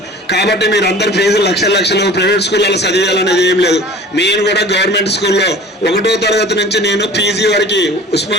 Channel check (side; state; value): both; normal; correlation 0.42